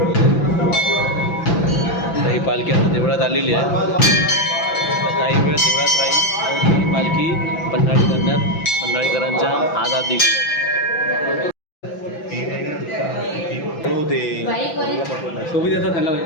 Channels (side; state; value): right; late; 5.9 ms